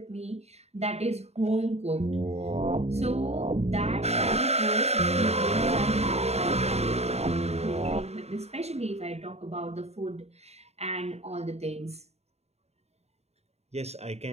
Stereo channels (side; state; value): left; late; 0.31 ms